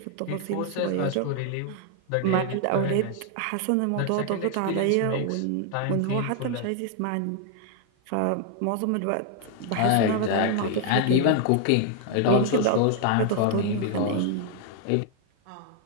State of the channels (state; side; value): different; both; correlation 0.00